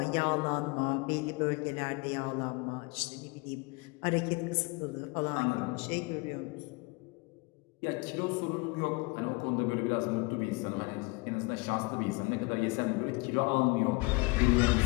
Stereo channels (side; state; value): right; quieter; 26.9 dB